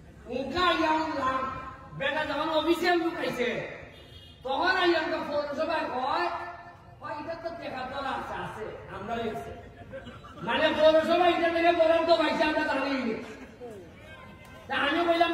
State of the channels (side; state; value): both; identical; correlation 1.00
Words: উনকা ইয়াম বেটা যখন অফিসিয়াল লোক আইছে তখন আইয়ামকে পৌরসভায় কয় এটা তো টাকা তোলা আছে আমরাও আছে মানে পৌরসভা এটা থেকে বরাদ্দ পাইছে আমরা জানি আমি বললাম